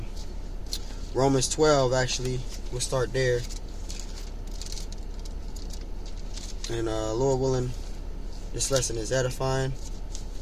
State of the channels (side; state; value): both; identical; correlation 1.00